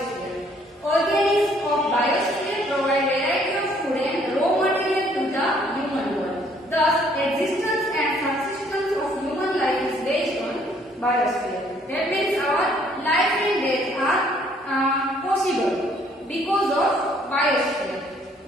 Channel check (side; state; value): both; normal; correlation 0.63